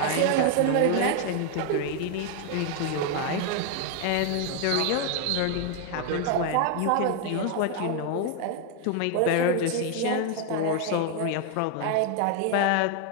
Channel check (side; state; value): both; different; correlation 0.00